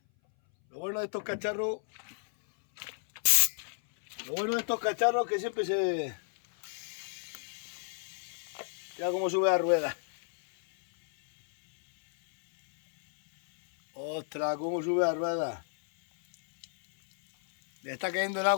lo bueno de estos cacharros es que siempre se... Mira cómo sube la rueda. Ostras, cómo sube la rueda. Le está cayendo el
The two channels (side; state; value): right; silent; 57 dB below the other